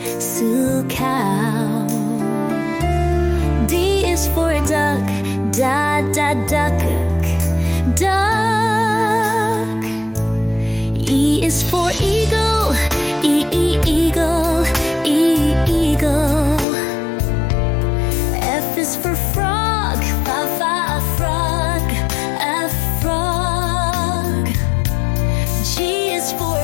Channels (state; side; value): drops out; right; at 16.7 s